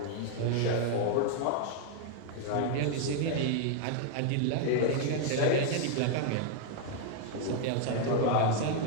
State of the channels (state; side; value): different; both; correlation 0.00